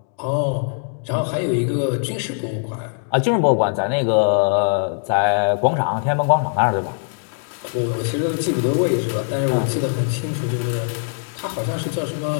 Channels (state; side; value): silent; right; 65 dB below the other